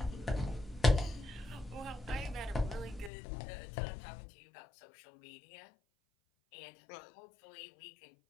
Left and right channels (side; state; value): right; drops out; at 3.1 s